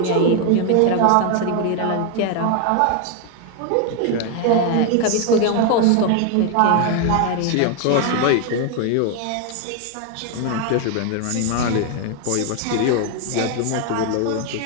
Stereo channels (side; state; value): both; different; correlation 0.01